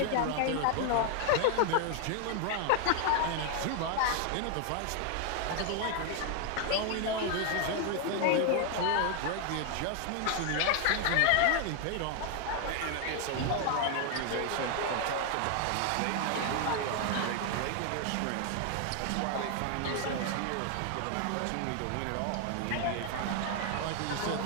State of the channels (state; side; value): different; both; correlation 0.00